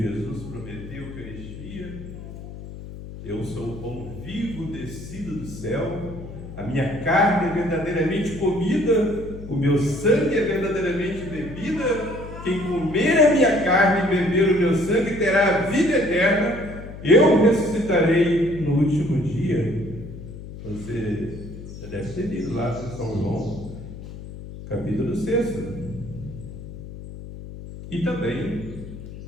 prometeu Eucaristia. Eu sou o pão vivo descido do céu, a minha carne é verdadeiramente comida, o meu sangue é verdadeiramente bebida. Quem comer a minha carne e beber o meu sangue terá a vida eterna. Eu ressuscitarei no último dia. Você já deve ter lido lá em São João, capítulo 6. E também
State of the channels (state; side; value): noise; left; hum, 12 dB below the sound